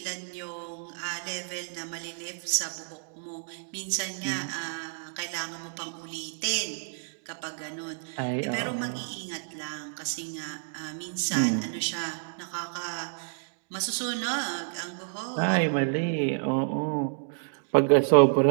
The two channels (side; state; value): left; silent; digital silence